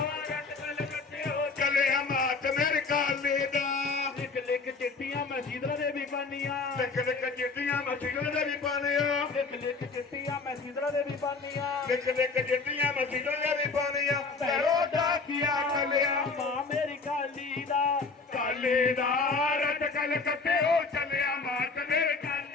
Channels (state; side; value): quieter; right; 4.3 dB